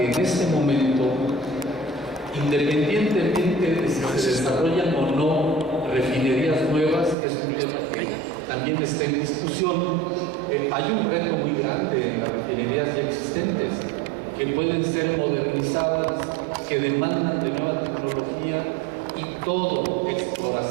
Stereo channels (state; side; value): drops out; left; at 7.2 s